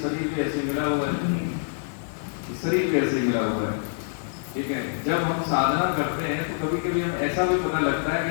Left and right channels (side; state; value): right; silent; digital silence